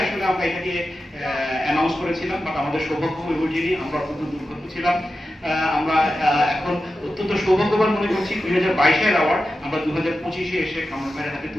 আসলে আমরা এটাকে অ্যানাউন্স করেছিলাম, বাট আমাদের সৌভাগ্য হয়ে ওঠেনি, আমরা অত্যন্ত দুর্ভাগ্য ছিলাম। আমরা এখন অত্যন্ত সৌভাগ্যবান মনে করছি 2022-এর অ্যাওয়ার্ড আমরা 2025-এ এসে কামরান ভাইয়ের হাতে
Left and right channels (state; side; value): normal; both; correlation 0.92